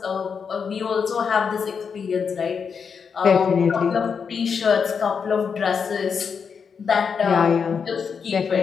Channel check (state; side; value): quieter; right; 6.2 dB